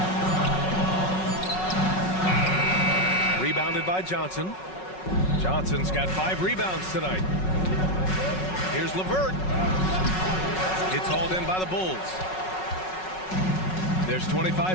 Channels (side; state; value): right; late; 5.4 ms